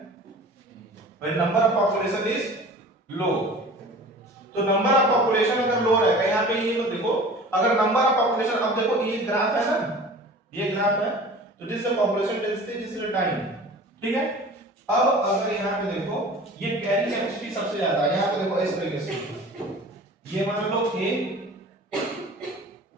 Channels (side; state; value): both; normal; correlation 0.42